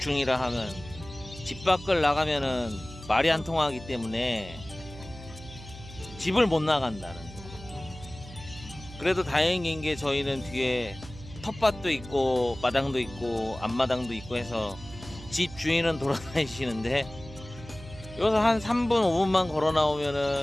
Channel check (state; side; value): noise; right; hum, 16 dB below the sound